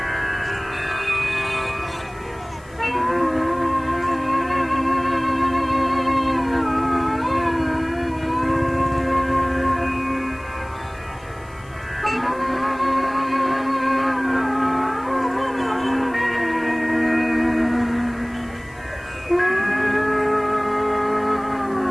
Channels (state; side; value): noise; left; hiss, 28 dB below the sound